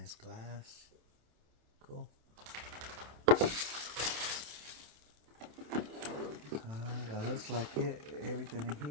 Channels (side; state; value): left; late; 27 ms